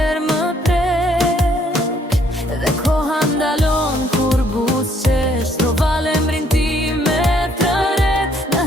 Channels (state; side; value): normal; both; correlation 0.67